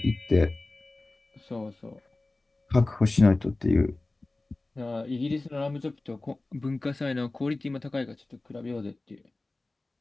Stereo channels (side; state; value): right; quieter; 3.0 dB